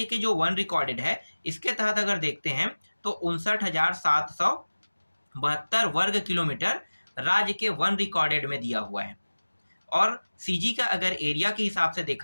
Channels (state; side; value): inverted; both; correlation -1.00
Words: के जो वन रिकॉर्डेड है, इसके तहत अगर देखते हैं तो 59,772 वर्ग किलोमीटर राज्य के वन रिकॉर्डेड में दिया हुआ है। और सीजी का अगर एरिया के हिसाब से